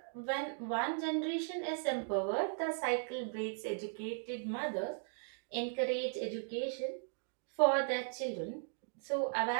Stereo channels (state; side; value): silent; left; digital silence